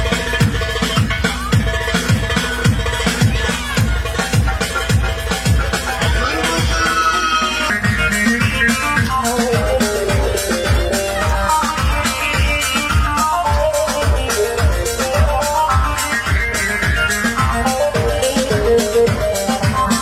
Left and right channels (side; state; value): both; identical; correlation 1.00